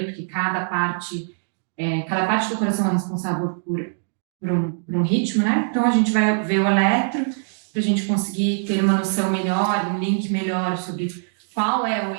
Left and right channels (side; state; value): left; silent; digital silence